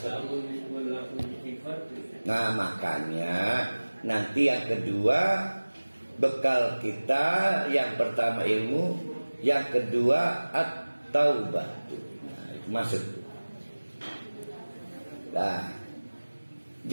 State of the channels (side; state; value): both; inverted; correlation -1.00